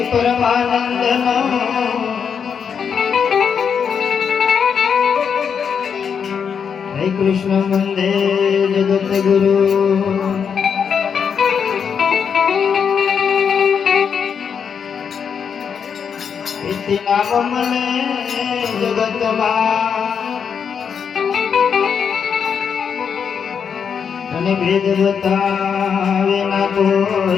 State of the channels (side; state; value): right; quieter; 6.9 dB